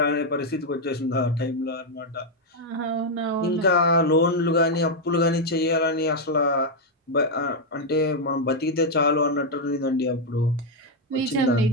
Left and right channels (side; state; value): both; normal; correlation 0.00